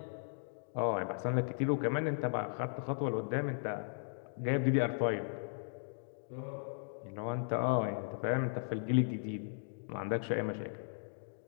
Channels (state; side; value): silent; right; digital silence